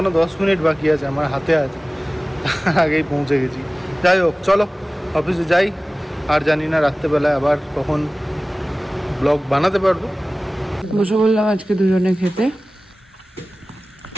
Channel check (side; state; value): both; normal; correlation 0.98